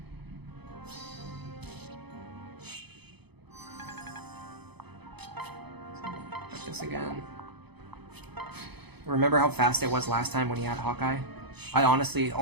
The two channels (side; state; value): left; late; 0.98 ms